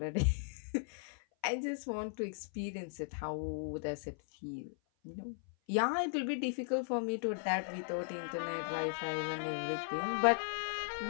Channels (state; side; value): silent; right; 53 dB below the other